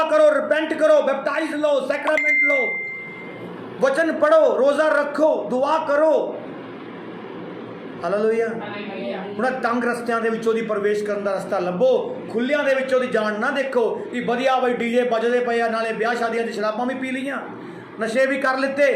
करो, रिपेंट करो, बैप्टाइज लो, सैक्रामेंट लो, वचन पढ़ो, रोज़ा रखो, दुआ करो। हालेलुया। ਹੁਣ ਤੰਗ ਰਸਤਿਆਂ ਦੇ ਵਿੱਚੋਂ ਦੀ ਪ੍ਰਵੇਸ਼ ਕਰਨ ਦਾ ਰਸਤਾ ਲੱਭੋ, ਖੁੱਲਿਆਂ ਦੇ ਵਿੱਚੋਂ ਦੀ ਜਾਣ ਨਾ ਦੇਖੋ ਕਿ ਵਧੀਆ ਬਈ ਡੀਜੇ ਵੱਜਦੇ ਪਏ ਆ, ਨਾਲੇ ਵਿਆਹ ਸ਼ਾਦੀਆਂ ਦੀ ਸ਼ਰਾਬਾਂ ਵੀ ਪੀ ਲਈਆਂ, ਨਸ਼ੇ ਵੀ ਕਰ ਲਿੱਤੇ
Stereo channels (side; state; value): both; identical; correlation 1.00